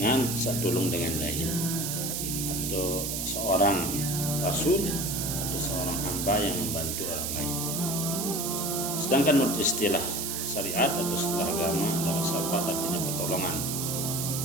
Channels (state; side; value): noise; right; hiss, 2 dB below the sound